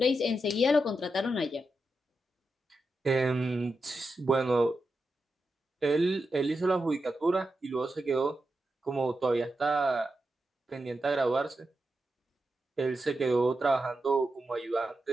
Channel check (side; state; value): both; normal; correlation 0.88